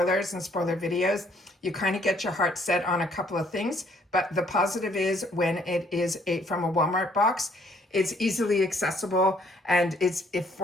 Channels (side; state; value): both; normal; correlation 0.65